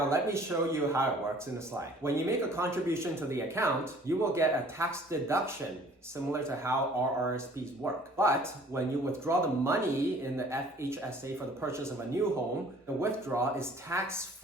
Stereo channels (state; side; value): normal; both; correlation 0.53